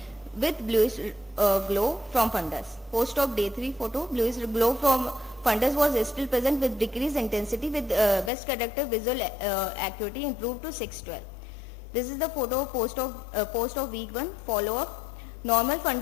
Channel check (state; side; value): drops out; right; at 8.3 s